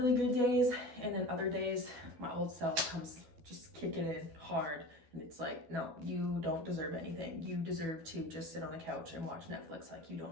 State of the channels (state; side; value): late; left; 12 ms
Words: good days, and then other days my old self comes just kicking in hard, and it's like, no, you don't deserve anything. You deserve to just sit on the couch and watch Netflix. Like, you